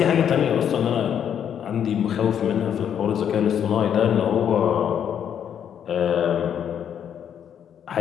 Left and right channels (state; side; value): quieter; right; 8.8 dB